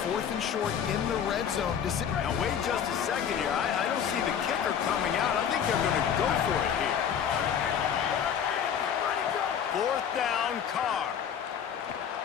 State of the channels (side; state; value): right; quieter; 8.2 dB